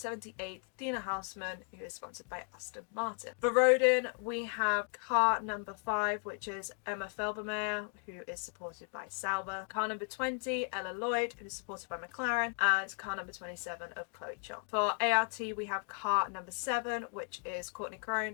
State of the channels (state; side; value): quieter; right; 37.9 dB